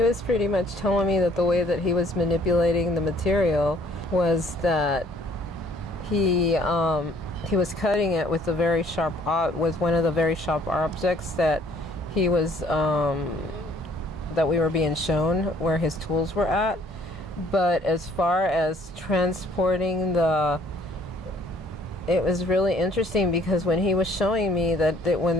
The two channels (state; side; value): normal; both; correlation 0.59